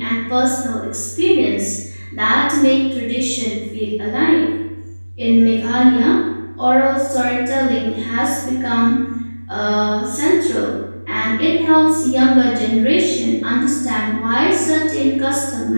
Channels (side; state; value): both; inverted; correlation -1.00